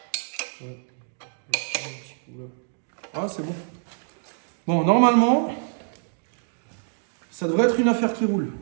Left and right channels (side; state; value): left; silent; 60 dB below the other